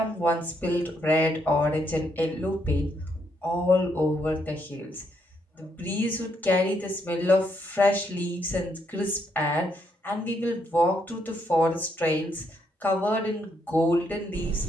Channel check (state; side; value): normal; both; correlation 0.75